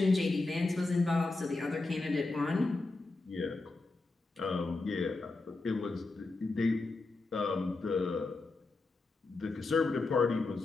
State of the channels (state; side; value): quieter; right; 3.4 dB